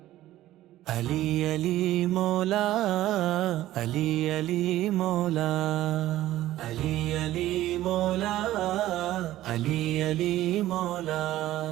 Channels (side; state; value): left; quieter; 14.7 dB